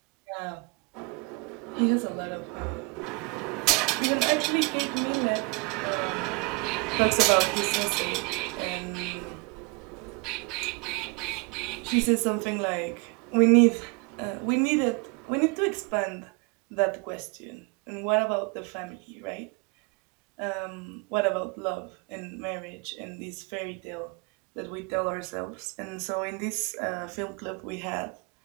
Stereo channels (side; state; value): left; quieter; 29.0 dB